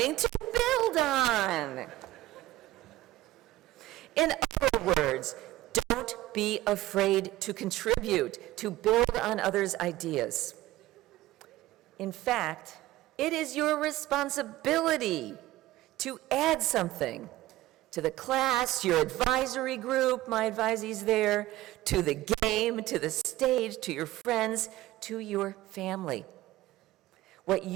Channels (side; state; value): left; quieter; 16.5 dB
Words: to build on. In other words, don't be afraid to contribute, to build on others' ideas. In fact, it is your responsibility to add something to the class, your advisory group, my advisees there, to the game, to the stage, to your friends, to your family. What